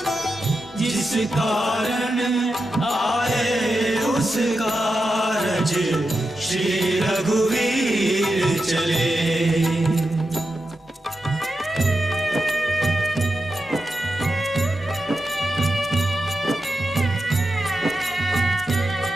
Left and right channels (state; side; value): normal; both; correlation 0.89